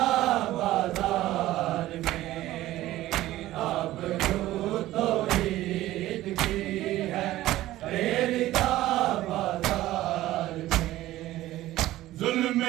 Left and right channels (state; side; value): quieter; left; 15.5 dB